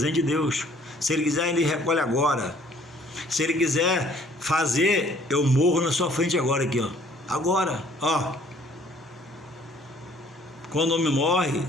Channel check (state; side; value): normal; both; correlation 0.58